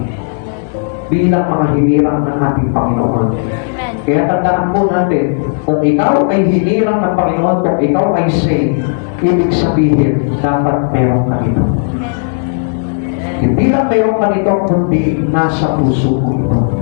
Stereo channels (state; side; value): silent; right; digital silence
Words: bilang mga hinirang ng ating Panginoon. Kaya tandaan po natin, kung ikaw ay hinirang ng Panginoon, kung ikaw ay saved, ibig sabihin, dapat meron ka ito. Hindi lang meron ka ito, kundi nasa puso ko ito.